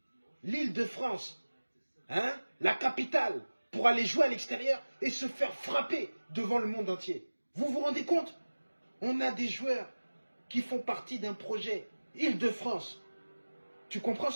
l'Île-de-France, hein, la capitale, pour aller jouer à l'extérieur et se faire frapper devant le monde entier. Vous vous rendez compte? On a des joueurs qui font partie d'un projet Île-de-France. Tu comprends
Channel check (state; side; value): inverted; both; correlation -1.00